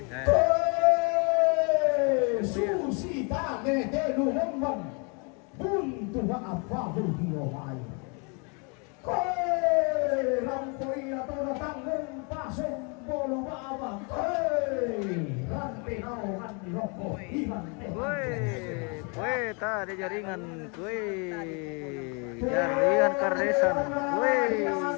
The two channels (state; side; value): quieter; right; 34.5 dB